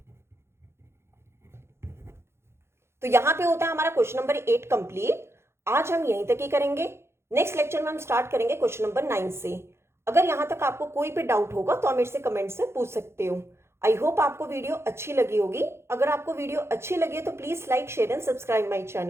तो यहां पे होता है हमारा क्वेश्चन नंबर 8 कंप्लीट। आज हम यहीं तक ही करेंगे, नेक्स्ट लेक्चर में हम स्टार्ट करेंगे क्वेश्चन नंबर 9 से। अगर यहां तक आपको कोई भी डाउट होगा तो आप मेरे से कमेंट्स में पूछ सकते हो। आई होप आपको वीडियो अच्छी लगी होगी। अगर आपको वीडियो अच्छी लगी है तो please like, share and subscribe my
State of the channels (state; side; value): late; left; 0.12 ms